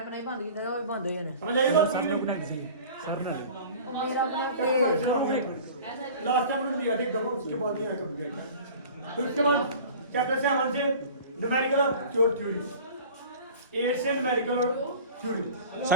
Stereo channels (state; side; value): inverted; both; correlation -0.41